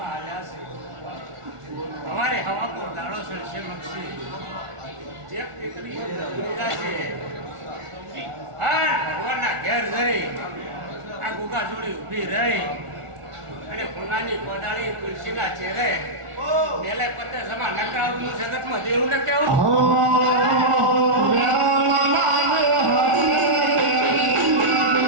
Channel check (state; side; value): late; left; 1.4 ms